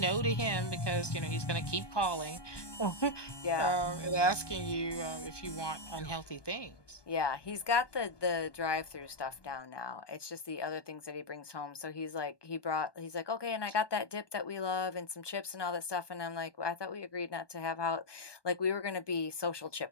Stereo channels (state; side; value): late; right; 1.2 ms